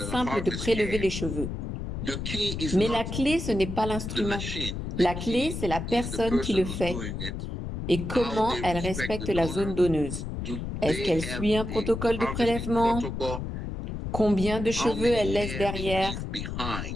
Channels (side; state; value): left; noise; rumble, 5 dB below the sound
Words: de prélever les cheveux. Mais la clé, ce n'est pas l'instrument. La clé, c'est la personne qui le fait et comment elle respecte la zone donneuse. Est-ce qu'elle suit un protocole de prélèvement? Combien de cheveux elle laisse derrière?